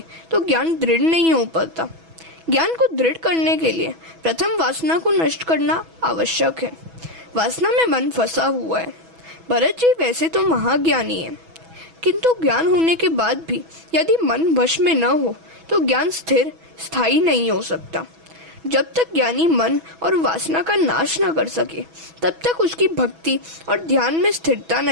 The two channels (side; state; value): left; late; 6.1 ms